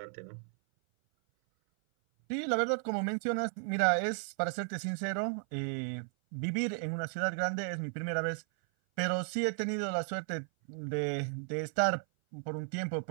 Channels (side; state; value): left; silent; 55 dB below the other